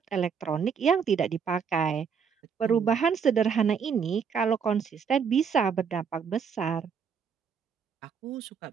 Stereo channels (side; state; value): left; quieter; 6.6 dB